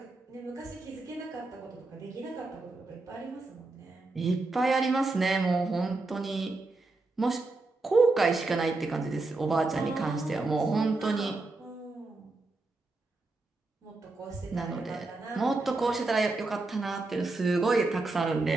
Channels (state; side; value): quieter; left; 3.3 dB